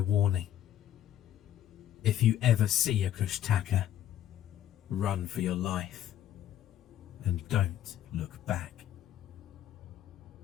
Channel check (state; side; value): quieter; right; 11.5 dB